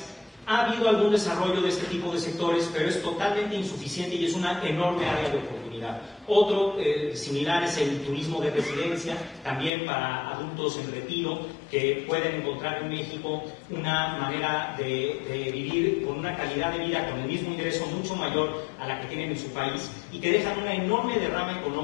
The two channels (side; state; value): right; drops out; at 9.7 s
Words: Ha habido algún desarrollo de este tipo de sectores, pero es totalmente insuficiente y es una enorme área de oportunidad. Otro similar es el turismo de residencia, también para adultos en retiro, que pueden encontrar en México una manera de vivir con una calidad de vida, con el mismo ingreso mucho mayor a la que tienen en su país y que dejan una enorme derrama